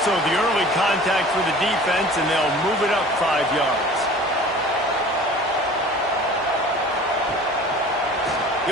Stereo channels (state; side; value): normal; both; correlation 0.44